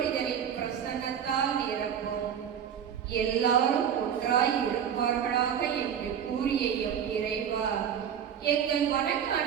பிரசன்னத்தால் நிரப்பும். எல்லாரும் ஒன்றாய் இருப்பார்களாக என்று கூறிய எம் இறைவா, எங்கள்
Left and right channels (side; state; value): left; quieter; 8.6 dB